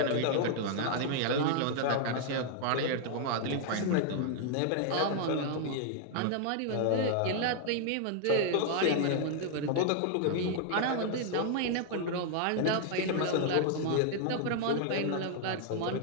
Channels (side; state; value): both; different; correlation 0.00